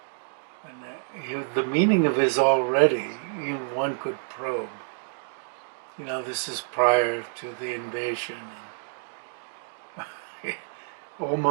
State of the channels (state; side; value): silent; left; digital silence